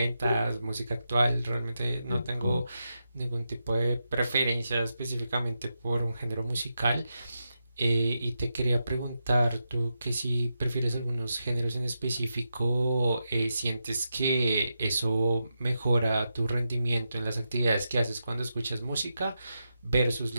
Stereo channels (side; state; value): both; inverted; correlation -0.87